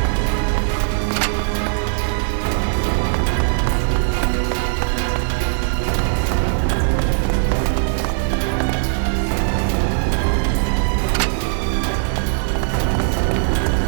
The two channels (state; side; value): silent; left; 55 dB below the other